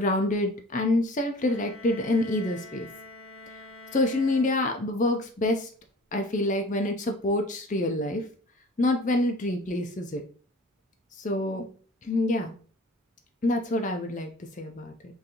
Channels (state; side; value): normal; both; correlation 0.44